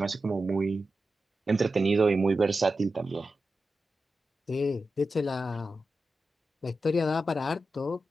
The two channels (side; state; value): both; normal; correlation 0.91